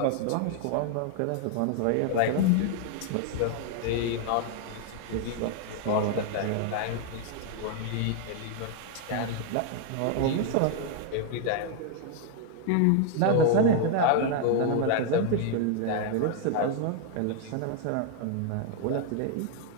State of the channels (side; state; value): both; different; correlation 0.00